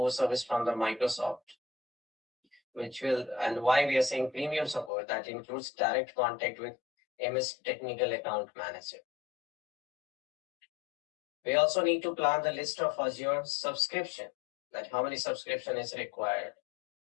service from the Microsoft, which will, and why we are saying premium support, that includes direct contact with MS Technical Account Manager. We also need to plan the list of Azure subscription, that how many subscription is required,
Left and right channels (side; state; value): right; drops out; at 4.9 s